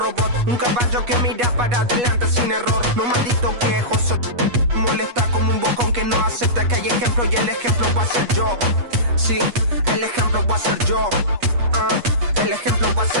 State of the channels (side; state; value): left; late; 8.3 ms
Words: Un caballo que mira para adelante sin error. No maldito quejoso, molesta como un bocón que no acepta que hay ejemplo. Y el ejemplo va a ser yo. Sí, el ejemplo va a ser yo. El ejemplo va a